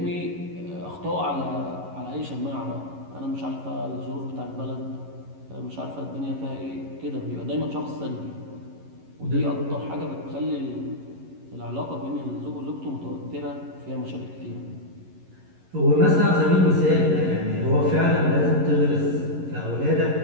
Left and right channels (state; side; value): late; left; 11 ms